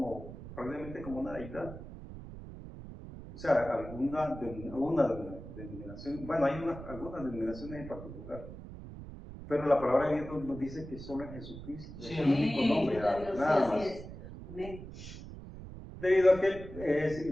probablemente como una deidad. O sea, alguna denominación, bueno, hay algunas denominaciones en particular, pero la palabra de Dios nos dice que solo en Jesucristo es el único nombre, nada más. Amén. Debido a que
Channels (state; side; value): noise; right; rumble, 12 dB below the sound